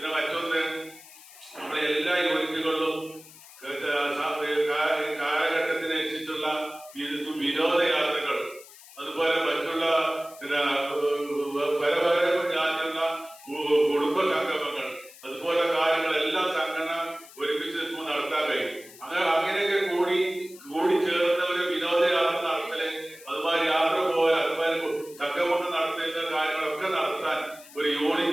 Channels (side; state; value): left; noise; hiss, 20 dB below the sound